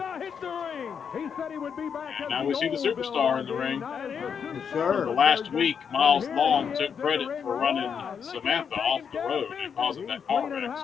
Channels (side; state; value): right; quieter; 7.0 dB